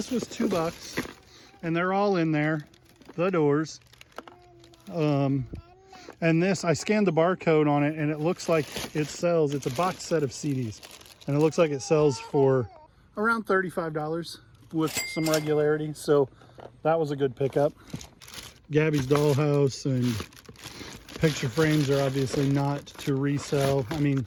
was $2 and they're all in there, the doors. And this, I scanned the barcode on it and it looks like it sells, it's a box set of CDs. And it looks like it sells for around $35 with some regularity. So that was a good pickup. Gabby's Dollhouse and picture frames are obviously not to resell. I mean,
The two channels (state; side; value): identical; both; correlation 1.00